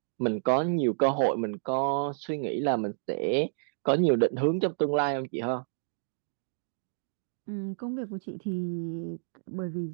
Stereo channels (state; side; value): silent; left; digital silence